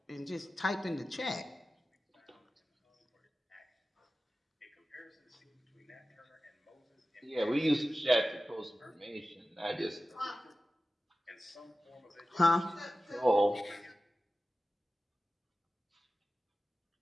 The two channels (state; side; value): normal; both; correlation 0.95